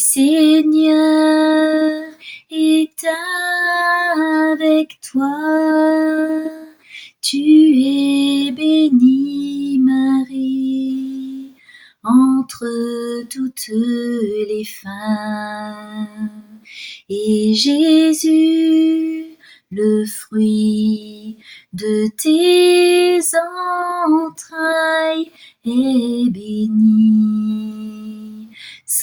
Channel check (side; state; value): both; identical; correlation 1.00